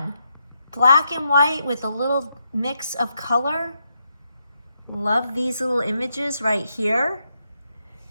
Black and white with a little mix of color. Love these little images right here.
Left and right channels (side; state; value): both; inverted; correlation -0.81